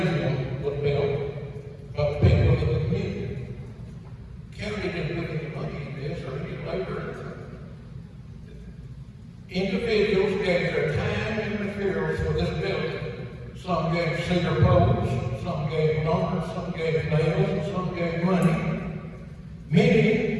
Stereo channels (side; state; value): both; identical; correlation 1.00